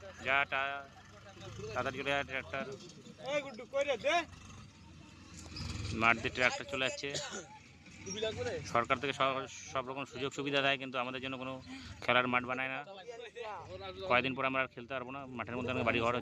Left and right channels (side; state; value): both; identical; correlation 1.00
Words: তাড়াতাড়ি গেলে ট্রাক্টর এই গুড্ডু কই রে দে। মাঠ দিয়ে ট্রাক্টর চলে যাচ্ছে। সরকার থেকে সব রকম সুযোগ সুবিধা দেয়, কিন্তু আমাদের জন্য কোনো খেলার মাঠ বানায় না। কয়েকদিন পর আমরা আর খেলতে পারবো না, মাঠের মধ্যে অনেক বাড়ি ঘর